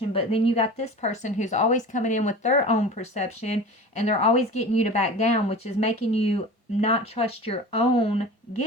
But then you got this person who's always coming in with their own perception, and they're always getting you to back down, which is making you not trust your own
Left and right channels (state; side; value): normal; both; correlation 0.36